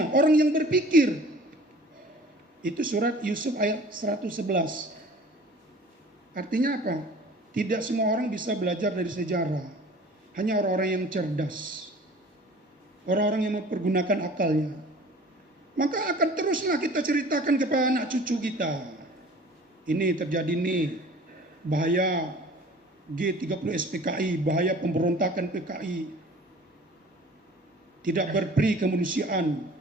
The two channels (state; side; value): normal; both; correlation 0.47